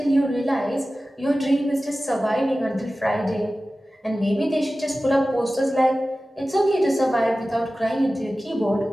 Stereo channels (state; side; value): normal; both; correlation 0.96